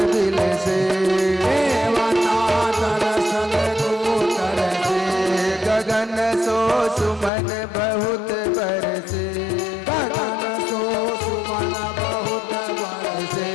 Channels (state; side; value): drops out; right; at 7.3 s